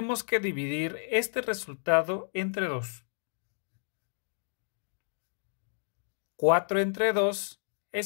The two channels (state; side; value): silent; right; digital silence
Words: que dividir este resultado entre 2. 4 entre 2